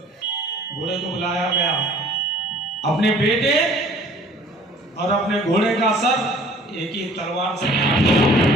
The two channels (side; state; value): both; normal; correlation 0.52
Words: घोड़े को बुलाया गया। अपने बेटे और अपने घोड़े का सर एक ही तलवार से काट दिया।